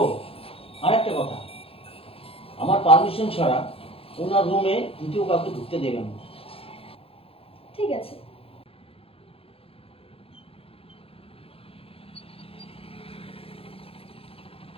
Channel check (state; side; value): late; right; 0.28 ms